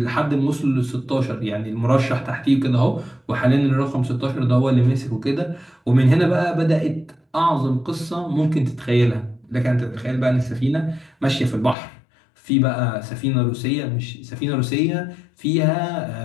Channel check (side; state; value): right; drops out; at 11.8 s